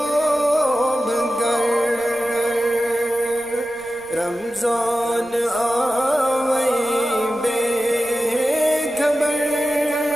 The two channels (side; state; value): right; noise; rumble, 28 dB below the sound